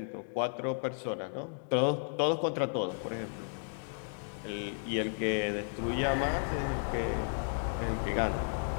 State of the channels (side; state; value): right; silent; 55 dB below the other